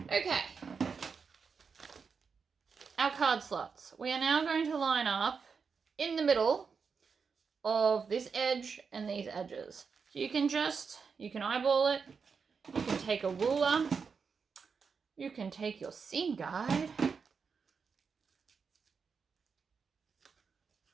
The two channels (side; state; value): left; quieter; 5.6 dB